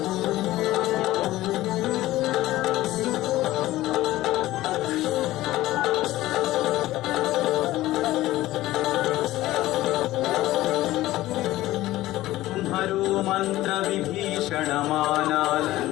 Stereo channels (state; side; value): quieter; right; 16.3 dB